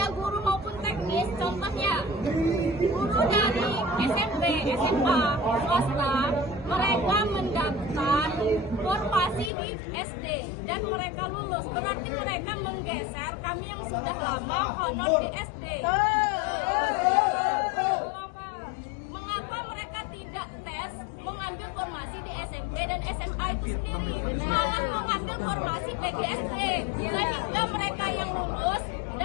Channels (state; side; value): drops out; right; at 9.5 s